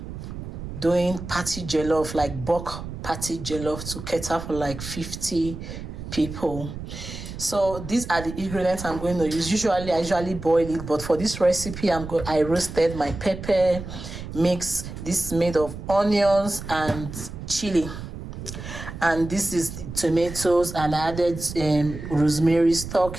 doing party jellof, like bulk party jellof to cater for like 50 people. So these are the ingredients I'm going to use. I usually boil it, but for this recipe, I roasted my pepper mix. This is made of onions and chili, and this is the tomatoes, and I added rosemary stock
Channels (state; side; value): noise; right; rumble, 10 dB below the sound